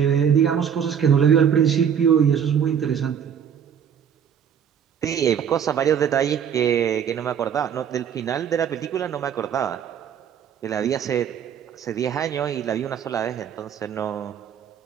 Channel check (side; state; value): left; quieter; 8.2 dB